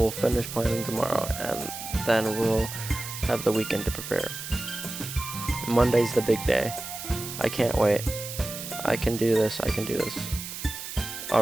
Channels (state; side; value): noise; right; hiss, 9 dB below the sound